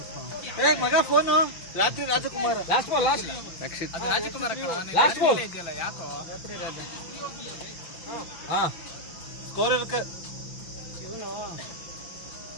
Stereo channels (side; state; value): right; late; 5.9 ms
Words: ಮಗ ಫೋನು ರಾತ್ರಿ ರಾಜಕುಮಾರ್ ರಕ್ಷಿತ್ ರಾಜಕುಮಾರ್ ಇದೆಯಲ್ಲ ಯಾಕೋ ರಾತ್ರಿ ರಾಜ ಸ್ಕೋರ್ ಇವನು